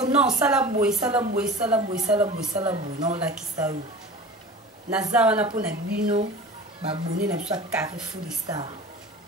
non sala boy non la kisa yo. Naza wana po na bino ba abonné na biso ya Carrefour des Stars.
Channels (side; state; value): both; normal; correlation 0.37